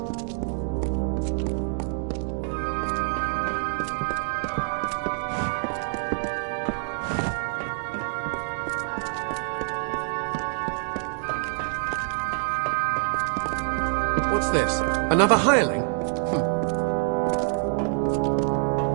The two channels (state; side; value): silent; left; 61 dB below the other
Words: What's this? Another hireling?